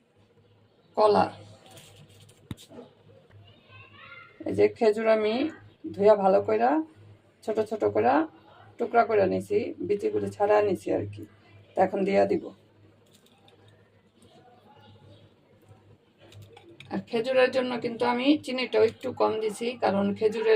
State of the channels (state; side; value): identical; both; correlation 1.00